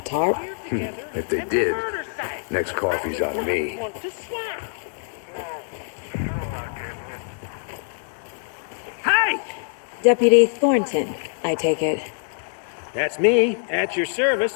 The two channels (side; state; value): right; silent; 62 dB below the other